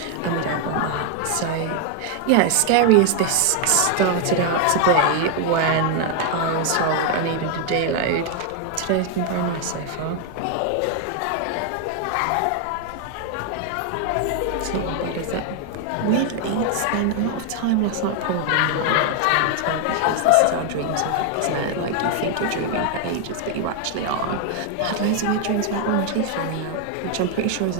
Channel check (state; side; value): different; both; correlation 0.00